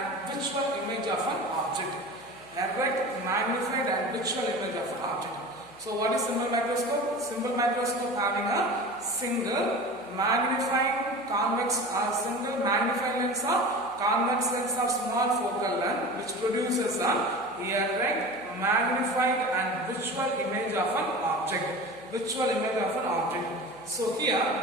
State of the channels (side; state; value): right; noise; hum, 28 dB below the sound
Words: visual image of an object. Erect, magnified and visual image of an object. So what is simple microscope? Simple microscope having a single magnifying convex or single magnifying lens of convex lens of small focal length which produces a erect, magnified and visual image of an object. Visual image of an object. So here